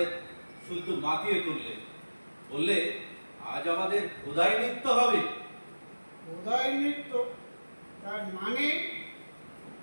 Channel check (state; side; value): inverted; both; correlation -1.00